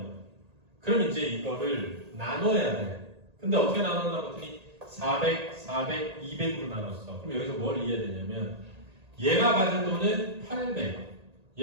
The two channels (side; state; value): left; late; 1.8 ms